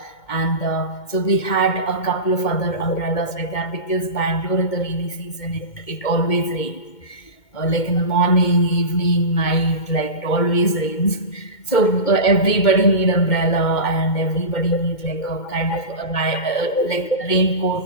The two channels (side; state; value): right; late; 2.2 ms